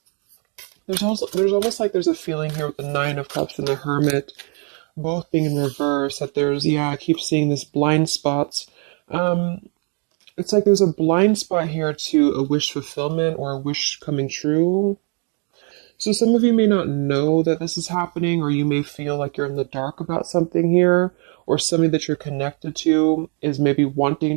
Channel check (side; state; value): left; quieter; 38.4 dB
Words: There's almost like there's a feeling here with the Nine of Cups and the Hermit, both being in reverse. That I keep seeing this blind spots. It's like there's a blind spot here to a wish fulfillment or a wish coming true. So some of you may not know that this is happening, or you may feel like you're in the dark about something here, or somebody that you're connected to is maybe